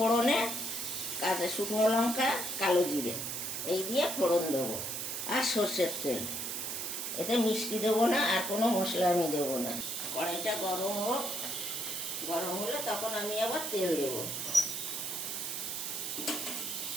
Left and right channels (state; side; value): noise; right; hiss, 3 dB below the sound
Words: কাঁচা শুকনো লঙ্কা, কালো জিরে, এই দিয়ে ফোড়ন দেবো, আর সর্ষের তেল। এতে মিষ্টি দেবো না, আর কোনো মশলা আমি দেবো না। কড়াইটা গরম হোক, গরম হলে তখন আমি আবার তেল দেবো।